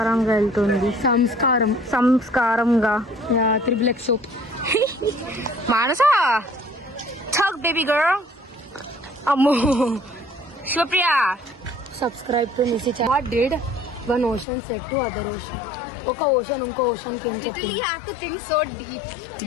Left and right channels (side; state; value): right; drops out; at 14.5 s